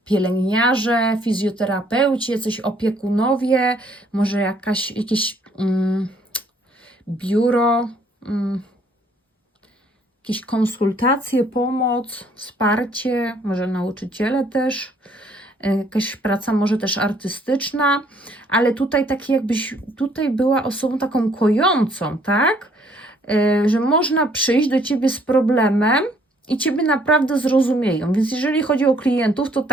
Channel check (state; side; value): normal; both; correlation 0.64